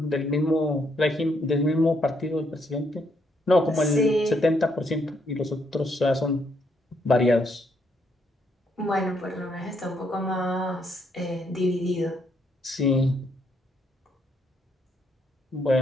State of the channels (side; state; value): both; normal; correlation 0.74